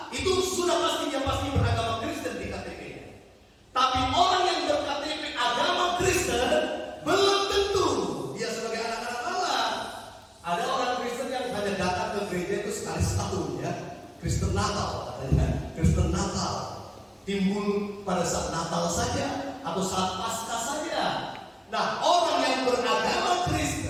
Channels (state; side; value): identical; both; correlation 1.00